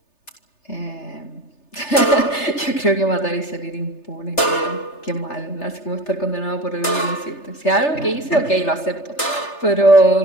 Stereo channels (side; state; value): right; late; 3.3 ms